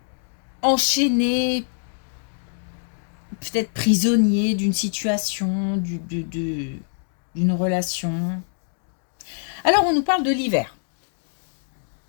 enchaîné, peut-être prisonnier d'une situation, d'une relation. Alors, on nous parle de l'hiver.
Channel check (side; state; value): right; silent; digital silence